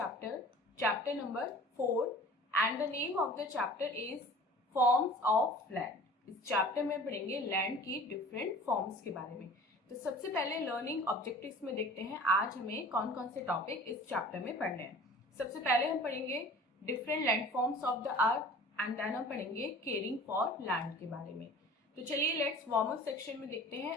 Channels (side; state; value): both; normal; correlation 0.44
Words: chapter number 4 and the name of the chapter is forms of land। इस चैप्टर में पढ़ेंगे land की डिफरेंट फॉर्म्स के बारे में। तो सबसे पहले लर्निंग ऑब्जेक्टिव्स में देखते हैं आज हमें कौन कौन से टॉपिक इस चैप्टर में पढ़ने हैं। सबसे पहले हम पढ़ेंगे different landforms of the earth and then हम पढ़ेंगे केयरिंग फॉर लैंड के बारे में। तो चलिए लेट्स वार्म अप सेक्शन में देखते